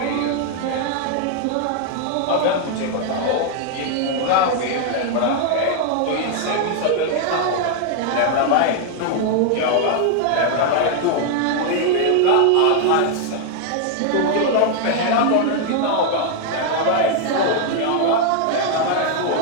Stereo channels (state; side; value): different; both; correlation 0.00